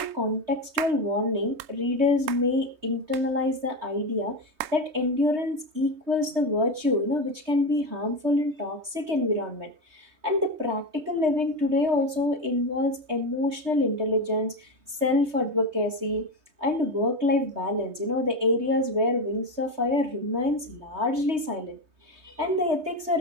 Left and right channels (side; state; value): left; late; 3.2 ms